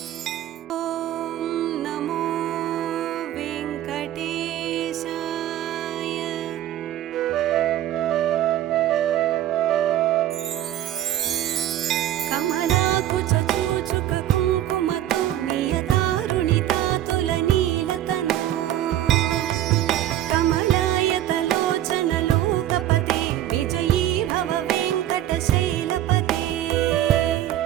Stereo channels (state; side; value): quieter; left; 12.6 dB